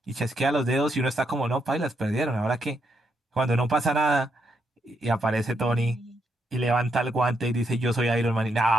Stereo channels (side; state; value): both; normal; correlation 0.78